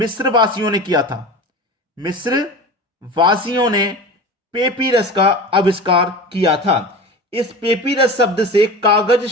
वासियों ने किया था। मिस्र वासियों ने पेपिरस का आविष्कार किया था। इस पेपिरस शब्द से कागज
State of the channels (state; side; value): normal; both; correlation 0.32